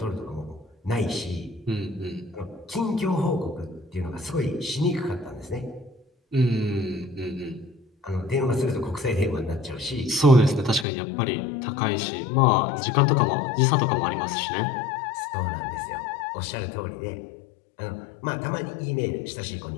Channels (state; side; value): drops out; right; at 10.9 s